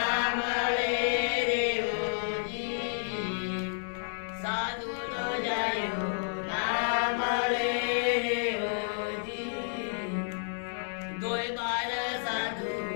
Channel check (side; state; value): right; silent; digital silence